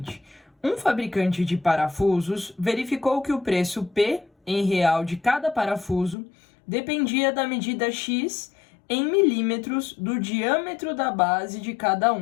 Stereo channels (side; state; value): right; drops out; at 6.2 s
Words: um fabricante de parafusos verificou que o preço P em real de cada parafuso dependia da medida X em milímetros do diâmetro da base de cada